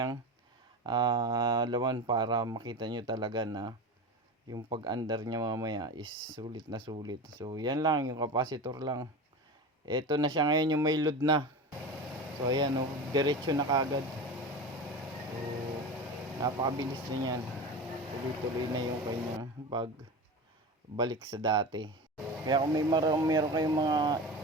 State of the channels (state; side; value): normal; both; correlation 0.27